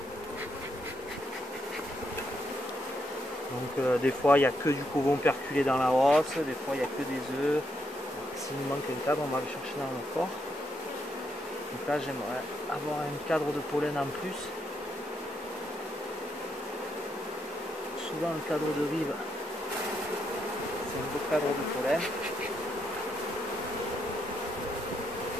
Donc des fois il n'y a que du couvain operculé dans la hausse, des fois il n'y a que des œufs. S'il nous manque un cadre, on va le chercher dans le corps. Donc là j'aimerais avoir un cadre de pollen en plus. Souvent le cadre de rive, c'est un beau cadre de pollen.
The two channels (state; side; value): normal; both; correlation 0.78